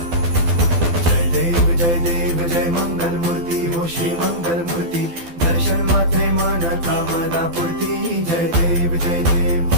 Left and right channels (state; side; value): late; left; 12 ms